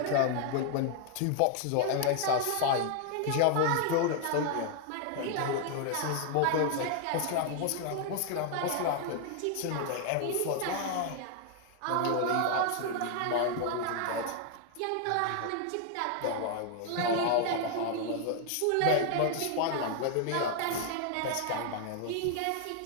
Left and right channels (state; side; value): different; both; correlation 0.00